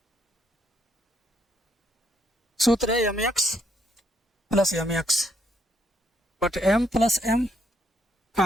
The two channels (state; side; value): normal; both; correlation 0.73